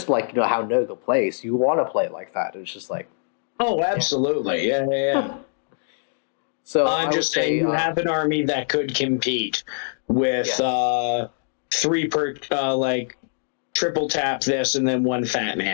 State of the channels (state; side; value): silent; right; digital silence